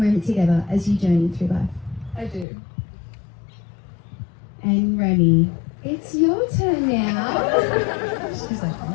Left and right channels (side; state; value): right; drops out; at 2.5 s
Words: together as you journey through life? I do. And Remy, it's your turn now. She's like,